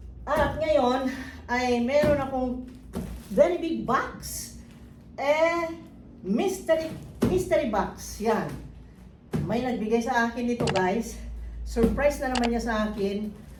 At ngayon ay meron akong very big box. Mystery box. Yan. May nagbigay sa akin nito, guys. Surprise na naman niya sa akin.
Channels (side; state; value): both; identical; correlation 1.00